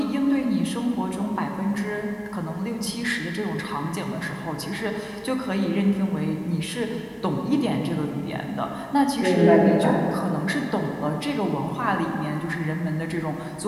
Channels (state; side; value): identical; both; correlation 1.00